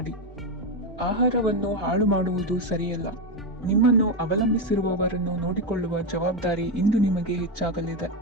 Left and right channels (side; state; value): both; normal; correlation 0.10